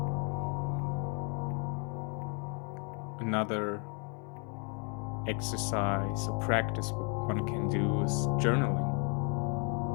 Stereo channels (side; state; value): right; quieter; 37.2 dB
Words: Another exercise or practice one can do is journaling.